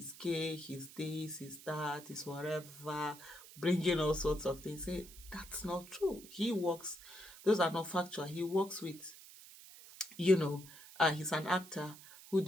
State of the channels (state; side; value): noise; right; hiss, 18 dB below the sound